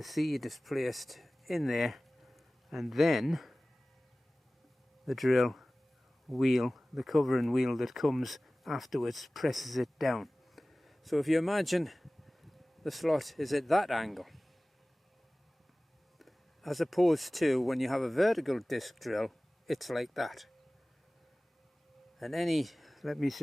seed is placed in there, and then the drill wheel, the covering wheel that comes afterwards, presses it down. So if you imagine the slot is at that angle, as opposed to when you have a vertical disc drill, it's like that. And let me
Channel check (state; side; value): normal; both; correlation 0.98